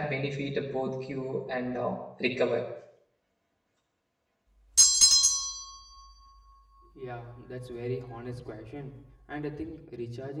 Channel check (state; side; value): identical; both; correlation 1.00